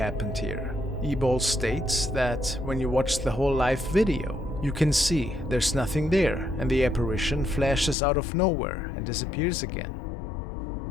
here?" eBall states that when you watch the whole live video, you can see there's nothing there and the apparition flashes out of nowhere and disappears again.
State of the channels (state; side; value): drops out; right; at 8.0 s